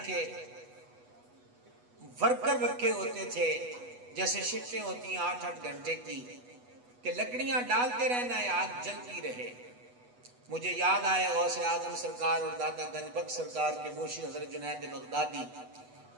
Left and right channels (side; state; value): left; late; 8.1 ms